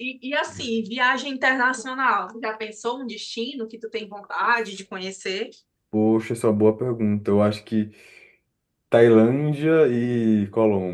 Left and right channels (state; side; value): identical; both; correlation 1.00